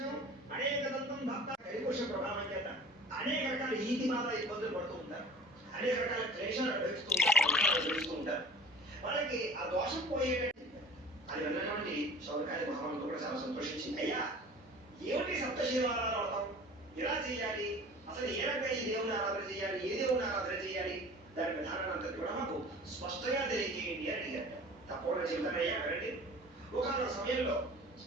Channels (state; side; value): normal; both; correlation 0.42